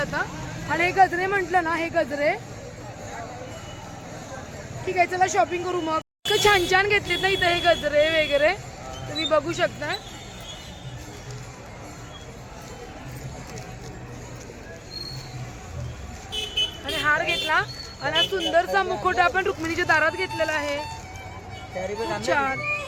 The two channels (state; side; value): identical; both; correlation 1.00